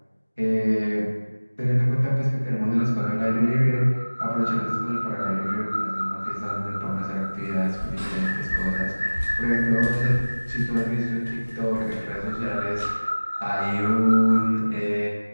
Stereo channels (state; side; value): inverted; both; correlation -1.00